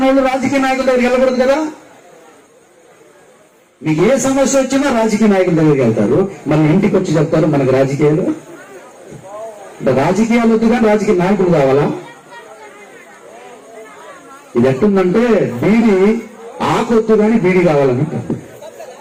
వాళ్ళు రాజకీయ నాయకుల దగ్గరికి వెళ్ళకూడదు కదా. మీకు ఏ సమస్య వచ్చినా రాజకీయ నాయకుల దగ్గరికి వెళ్తారు, మళ్ళీ ఇంటికి వచ్చి చెప్తారు మనకు రాజకీయాలు. రాజకీయాలు వద్దు కానీ రాజకీయ నాయకులు కావాలా? ఇది ఎట్టుందంటే బీడి ఆకొద్దు కానీ బీడి కావాలని,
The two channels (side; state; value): both; identical; correlation 1.00